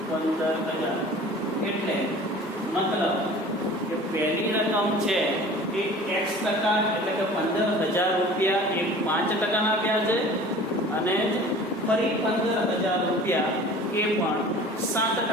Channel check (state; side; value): normal; both; correlation 0.43